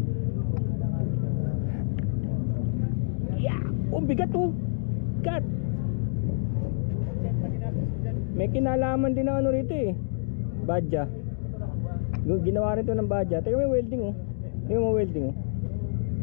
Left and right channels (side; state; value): right; silent; digital silence